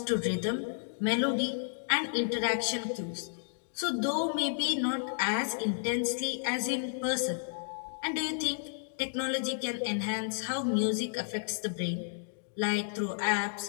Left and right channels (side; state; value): right; silent; digital silence